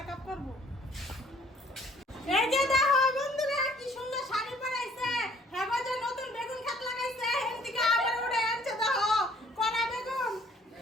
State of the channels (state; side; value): normal; both; correlation 0.60